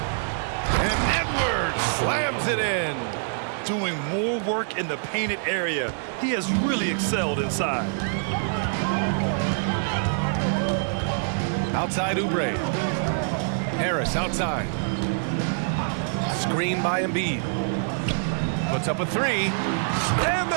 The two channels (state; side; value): silent; left; digital silence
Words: And Edwards slams it in. Doing more work in the painted area. He has really excelled inside. Outside Oubre. Harris outside. Screen by Embiid. Puts up a 3. And